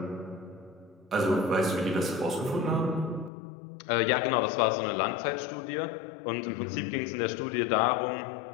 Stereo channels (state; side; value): drops out; right; at 3.3 s